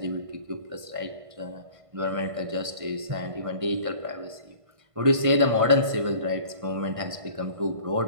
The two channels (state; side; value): late; left; 1.5 ms